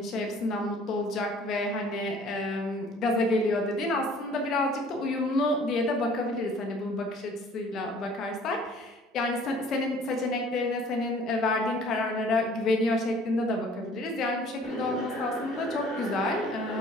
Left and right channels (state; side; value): normal; both; correlation 0.53